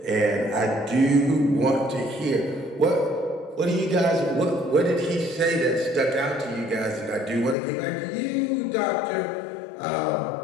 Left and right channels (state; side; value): drops out; right; at 7.6 s